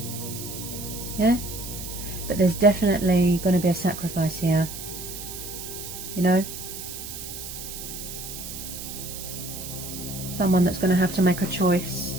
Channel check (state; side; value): noise; right; hiss, 9 dB below the sound